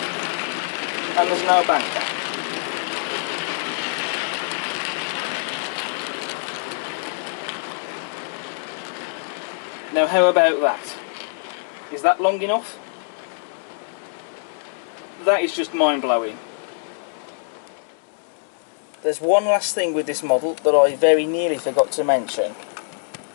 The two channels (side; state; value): right; silent; 63 dB below the other